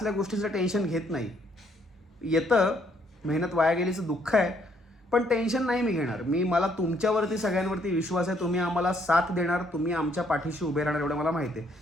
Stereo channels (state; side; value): normal; both; correlation 0.68